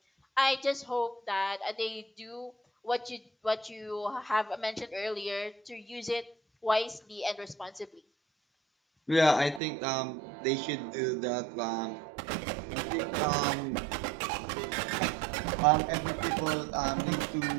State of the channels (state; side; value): drops out; left; at 9.6 s